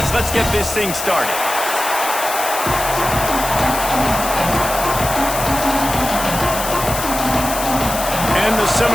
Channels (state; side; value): noise; left; hiss, 6 dB below the sound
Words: let's get this thing started. And the